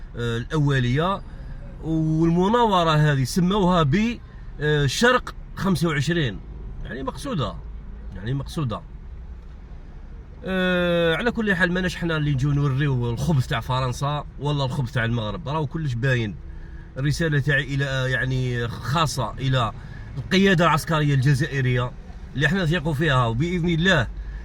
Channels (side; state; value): both; identical; correlation 1.00